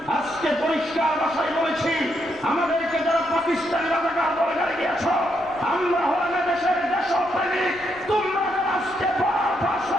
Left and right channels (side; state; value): left; noise; rumble, 24 dB below the sound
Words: আজকে পরিষ্কার ভাষায় বলেছি, আমাদেরকে যারা পাকিস্তানি রাজাকার বলে গালি দিয়েছ, আমরা হলাম দেশের দেশপ্রেমিক। তোমরা যারা আজকে